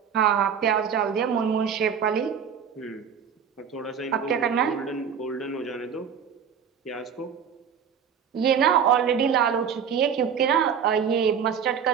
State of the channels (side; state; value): left; quieter; 7.5 dB